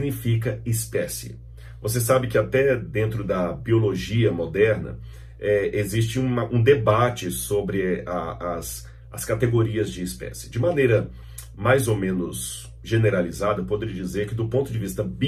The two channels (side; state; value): both; identical; correlation 1.00